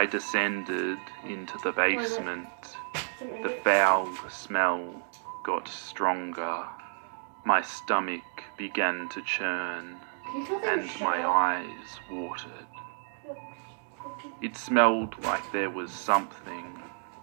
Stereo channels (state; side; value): silent; left; digital silence